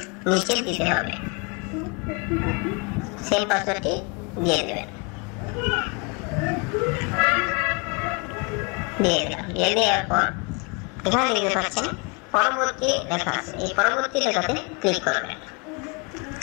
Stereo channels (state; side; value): quieter; right; 31.7 dB